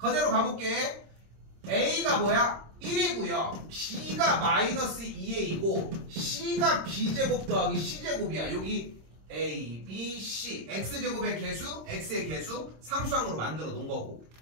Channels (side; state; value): left; late; 26 ms